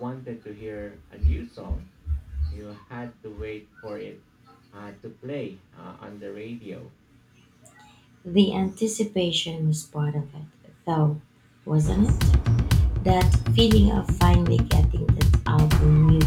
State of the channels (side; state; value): both; identical; correlation 1.00